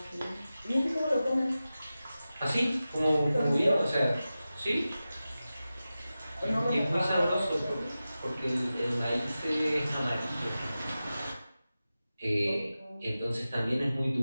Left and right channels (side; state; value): both; inverted; correlation -0.94